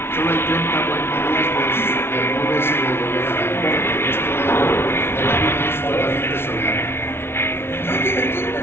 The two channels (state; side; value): late; right; 0.12 ms